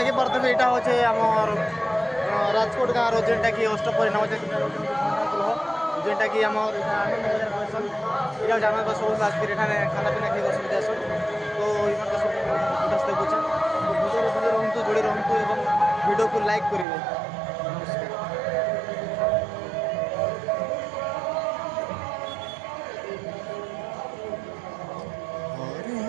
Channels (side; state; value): left; drops out; at 16.9 s